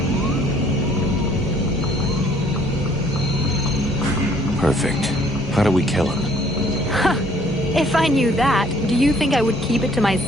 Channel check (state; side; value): normal; both; correlation 0.60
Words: Perfect. How do we kill him? If I knew that, do you think I would keep it to